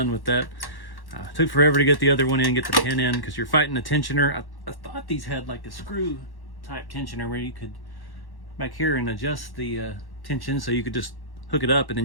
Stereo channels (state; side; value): late; right; 1.1 ms